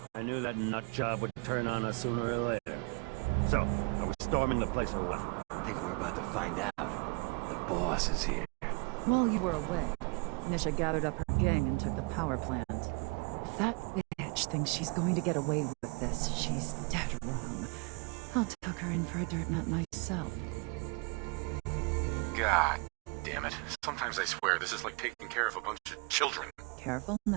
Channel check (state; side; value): quieter; left; 30.9 dB